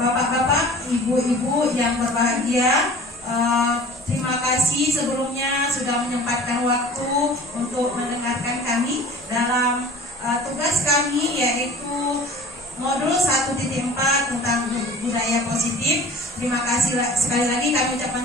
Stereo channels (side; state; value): both; normal; correlation 0.44